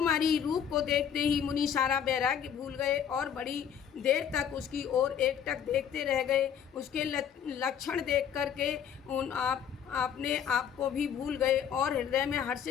रूप को देखते ही मुनि सारा वैराग्य भूल गए और बड़ी देर तक उसकी ओर एकटक देखते रह गए। उसके लक्षण देख करके अपने आप को भी भूल गए और हृदय में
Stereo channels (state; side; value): quieter; right; 8.5 dB